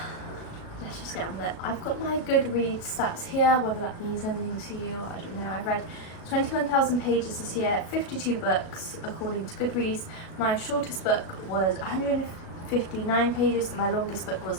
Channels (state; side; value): late; right; 37 ms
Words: Let's just get on with it. I've got my Goodreads stats here, whether that means anything to you, I don't know. I've read 21,000 pages this year, 52 books according to Goodreads. My shortest book was 159 pages and my longest book